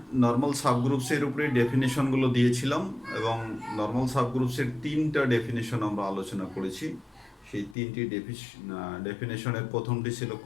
নর্মাল সাবগ্রুপসের উপরে ডেফিনেশনগুলো দিয়েছিলাম এবং নর্মাল সাবগ্রুপসের 3টা ডেফিনেশন আমরা আলোচনা করেছি। সেই 3টি ডেফিনেশনের প্রথমটি ছিল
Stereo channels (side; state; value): right; drops out; at 7.8 s